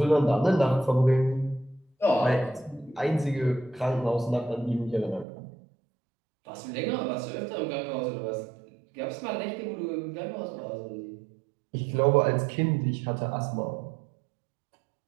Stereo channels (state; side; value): drops out; left; at 5.2 s